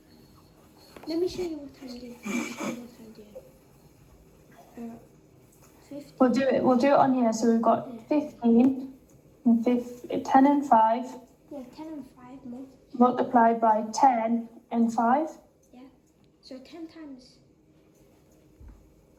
Let me show you what I'm doing. 50. We'll do it on here. So we've got 15 and 10 and 5 Yeah, 10 and 5 multiplied by 10 and 5. Yeah. So 10 times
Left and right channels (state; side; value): identical; both; correlation 1.00